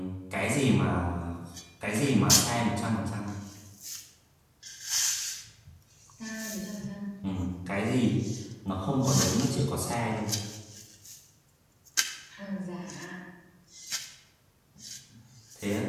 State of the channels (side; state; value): both; identical; correlation 1.00